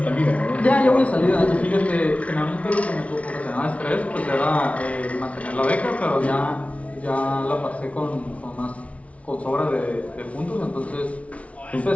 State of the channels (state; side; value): late; right; 0.065 ms